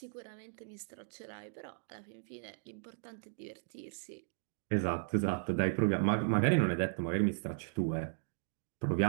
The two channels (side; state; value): left; silent; digital silence